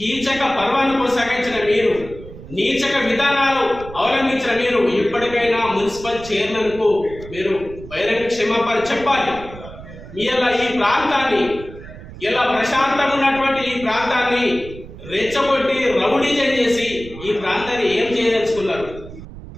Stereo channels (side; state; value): right; noise; rumble, 15 dB below the sound